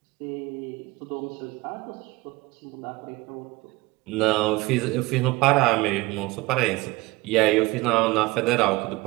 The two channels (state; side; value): quieter; left; 21.7 dB